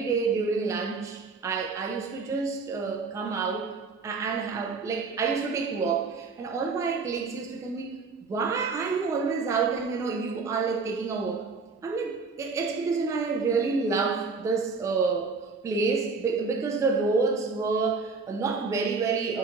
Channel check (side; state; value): left; quieter; 4.4 dB